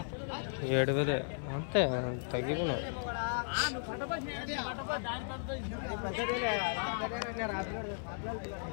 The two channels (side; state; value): right; silent; digital silence